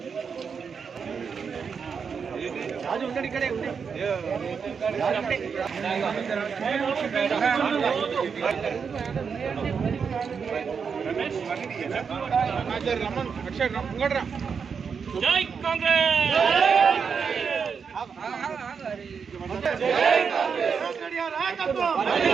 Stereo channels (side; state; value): left; quieter; 6.1 dB